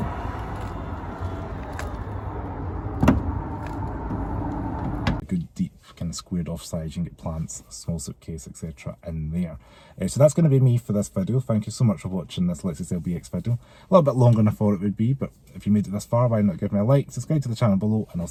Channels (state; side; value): identical; both; correlation 1.00